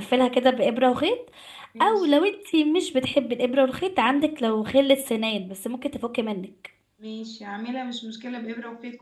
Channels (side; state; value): both; identical; correlation 1.00